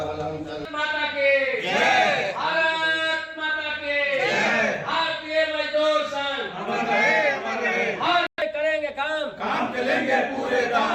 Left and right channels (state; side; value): identical; both; correlation 1.00